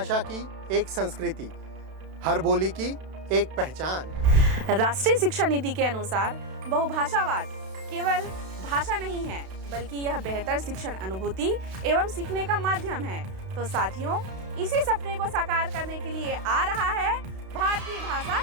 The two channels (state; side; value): late; left; 32 ms